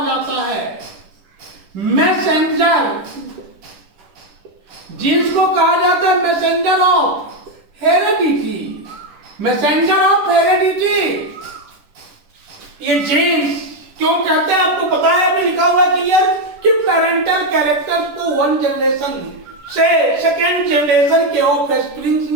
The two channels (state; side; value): late; left; 10 ms